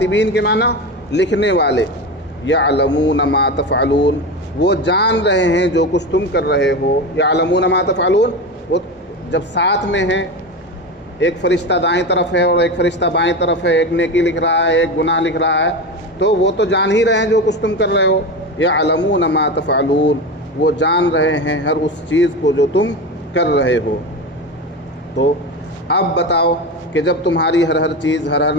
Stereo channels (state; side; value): normal; both; correlation 0.22